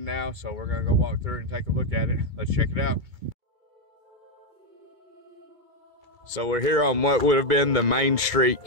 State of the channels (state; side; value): late; left; 2.3 ms